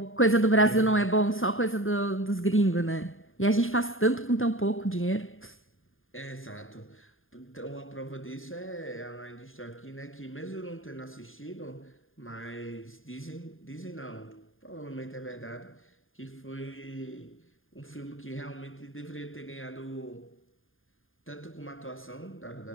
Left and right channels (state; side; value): late; right; 0.59 ms